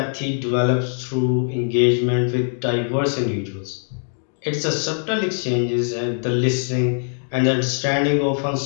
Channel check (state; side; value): silent; right; 64 dB below the other